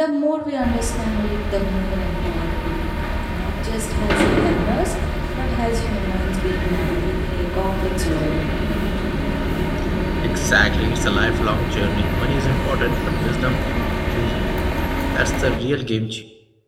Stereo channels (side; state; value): both; identical; correlation 1.00